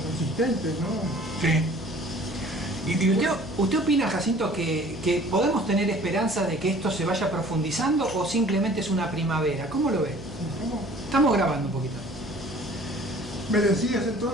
asistentes, ¿no? Sí. ¿Y usted opina, Jacinto, que podemos tener esperanza de que esto se vaya profundizando o simplemente es una primavera? ¿Cómo lo ve? ¿Cómo? Estamos grabando un poquito. ¿Me decías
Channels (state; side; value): noise; left; hum, 14 dB below the sound